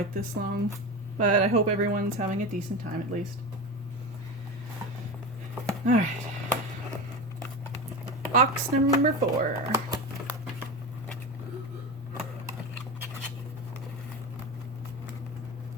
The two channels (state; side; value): normal; both; correlation 0.24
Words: this long. But I hope everyone's having a decent time at least. Alright. Box number 4.